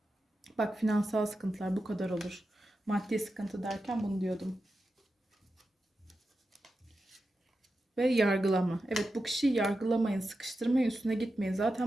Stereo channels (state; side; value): normal; both; correlation 0.90